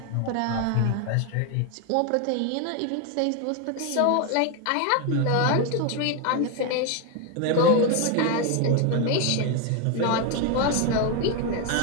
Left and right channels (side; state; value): both; different; correlation 0.01